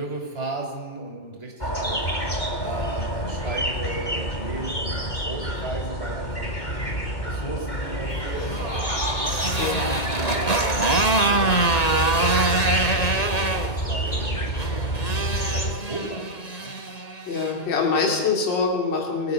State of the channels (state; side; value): late; right; 1.9 ms